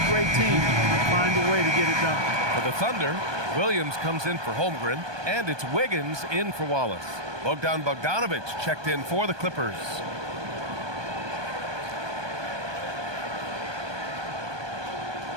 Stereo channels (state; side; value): late; left; 1.2 ms